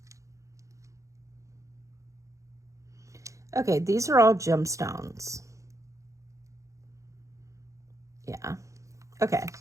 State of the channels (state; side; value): late; left; 0.15 ms